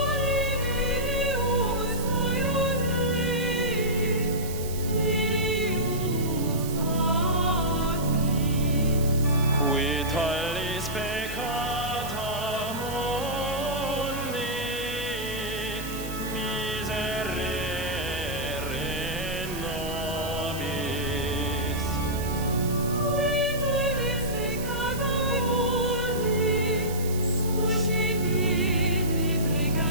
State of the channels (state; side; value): noise; right; hiss, 11 dB below the sound